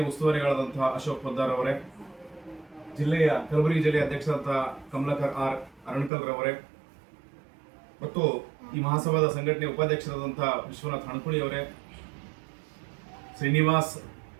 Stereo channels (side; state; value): left; drops out; at 6.1 s